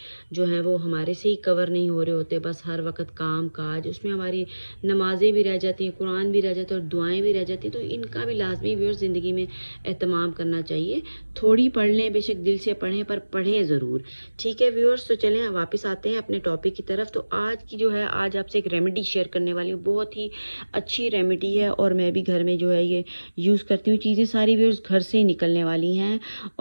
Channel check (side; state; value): both; inverted; correlation -1.00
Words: जो हैं वो हमारे से ही कवर नहीं हो रहे होते। बस हर वक्त काम काज, उसमें हमारी नमाज़ें भी रह जाती हैं, कुरान भी रह जाता है और दुआएं भी रह जाती हैं। तो इनका भी लाजमी व्यूअर्स ज़िंदगी में एहतमाम करना चाहिए। थोड़ी पढ़ लें, बेशक दिल से पढ़ें, पर पढ़ें ज़रूर। ठीक है व्यूअर्स, तो चलें वापस आते हैं अपने टॉपिक की तरफ। तो आज की जो है, आज आपसे एक रेमेडी शेयर करने वाली हूँ। बहुत ही अच्छी रेमेडी है और मैं भी घर में जो है ये यूज़ करती हूँ। चीज़ें सारी व्यूअर्स घर से ही निकलने वाली हैं